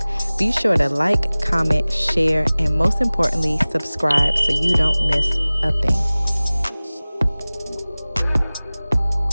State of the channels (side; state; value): both; inverted; correlation -0.99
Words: Be sure to like, comment, share, and most importantly, subscribe so you don't miss a thing.